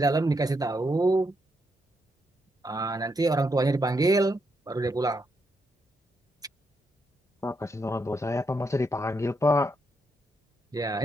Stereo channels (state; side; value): normal; both; correlation 0.80